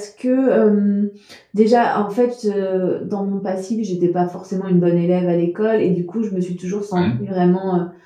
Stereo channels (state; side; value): identical; both; correlation 1.00